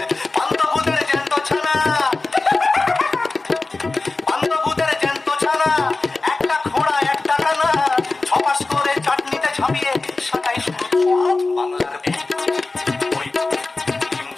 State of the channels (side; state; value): right; quieter; 3.5 dB